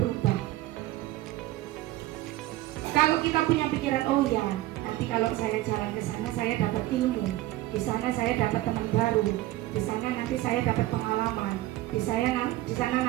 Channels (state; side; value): quieter; left; 16.5 dB